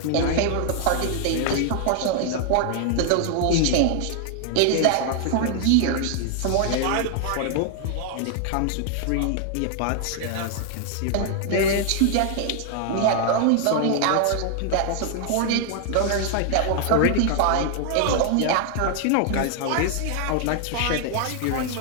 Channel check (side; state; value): both; different; correlation 0.00